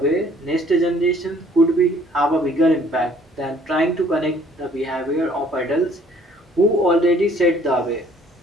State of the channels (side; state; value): both; normal; correlation 0.58